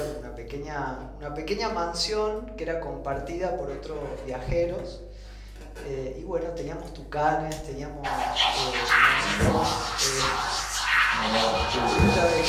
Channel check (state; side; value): identical; both; correlation 1.00